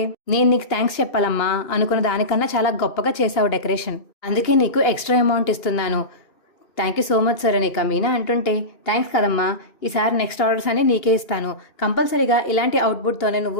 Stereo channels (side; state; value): right; late; 2.8 ms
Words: నేను నీకు థ్యాంక్స్ చెప్పాలమ్మా, అనుకున్న దానికన్నా చాలా గొప్పగా చేశావు డెకరేషన్, అందుకే నీకు ఎక్స్ట్రా అమౌంట్ ఇస్తున్నాను. Thank you so much sir అని ఇక మీనా అంటుంటే, థ్యాంక్స్ కదమ్మా, ఈసారి నెక్స్ట్ ఆర్డర్స్ అన్ని నీకే ఇస్తాను, కంపల్సరీగా ఇలాంటి అవుట్పుట్తోనే